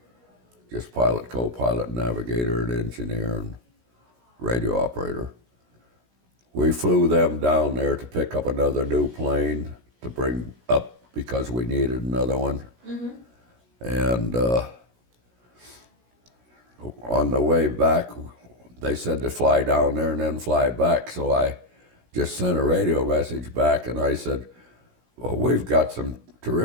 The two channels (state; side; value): late; left; 16 ms